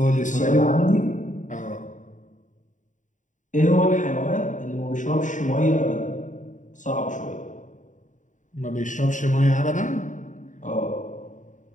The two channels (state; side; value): late; right; 0.36 ms